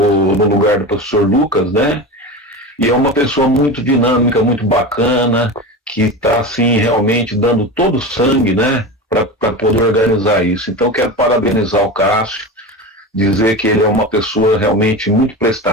lugar do professor Lucas, né? E é uma pessoa muito dinâmica, muito bacana, que está, assim, realmente dando todo o sangue, né, para poder organizar isso. Então, quero parabenizar o Cássio, dizer que ele é uma pessoa realmente muito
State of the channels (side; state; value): both; normal; correlation 0.26